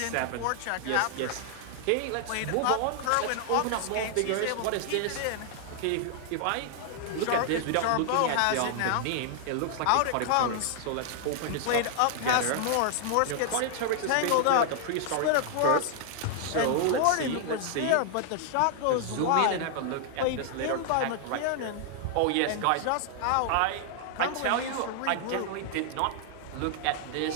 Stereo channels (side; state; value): both; different; correlation 0.00